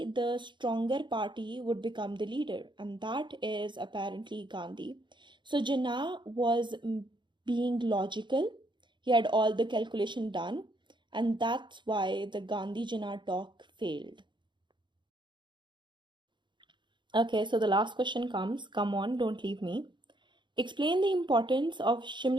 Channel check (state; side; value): late; left; 0.23 ms